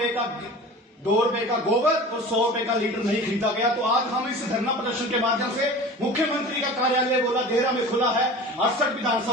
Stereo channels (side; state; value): both; normal; correlation 0.37